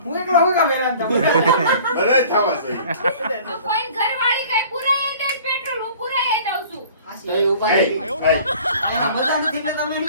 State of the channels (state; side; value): inverted; both; correlation -0.48